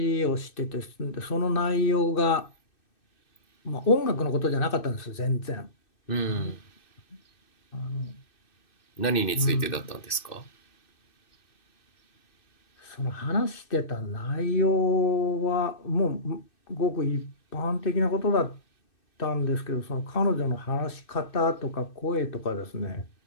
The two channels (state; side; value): late; right; 2.6 ms